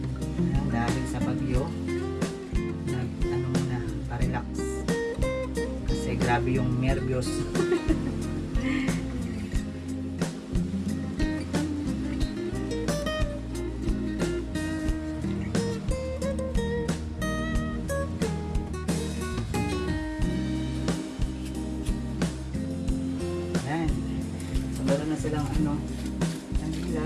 Dahil sa bagyo, ano muna, pa-relax. Kasi grabe yung nervyos. Yan. So, meron na silang ano, kanila.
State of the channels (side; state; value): both; identical; correlation 1.00